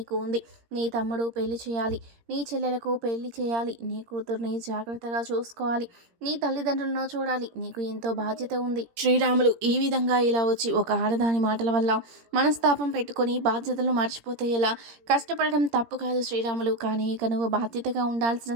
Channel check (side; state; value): left; late; 17 ms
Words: ఉంది. నీ తమ్ముడు పెళ్లి చేయాలి, నీ చెల్లెలకు పెళ్లి చేయాలి, నీ కూతుర్ని జాగ్రత్తగా చూసుకోవాలి, నీ తల్లిదండ్రులను చూడాలి. నీకు ఎంతో బాధ్యత ఉంది. శ్రీరాములు ఈ విధంగా ఇలా వచ్చి ఒక ఆడదాని మాటల వల్ల మనస్తాపం పెట్టుకొని బాధ్యతలు మర్చిపోతే ఎలా? కష్టపడడం తప్పు కాదు శ్రీరాములు, కానీ ఇక నువ్వు బాధ్యతగా ఉండాల్సిన